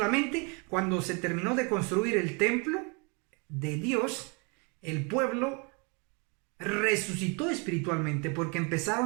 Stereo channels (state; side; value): quieter; left; 32.6 dB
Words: cuando se terminó de construir el templo de Dios, el pueblo resucitó espiritualmente porque